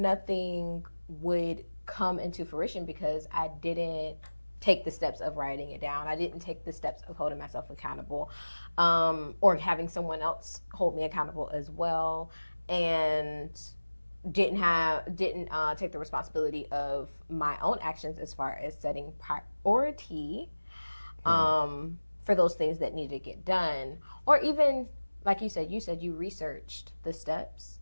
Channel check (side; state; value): both; inverted; correlation -1.00